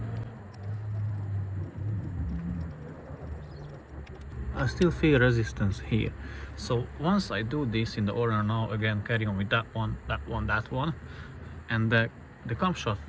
I still feel resistance here. So once I do this in the order now, again carry on with that one, and the camshaft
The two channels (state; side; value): identical; both; correlation 1.00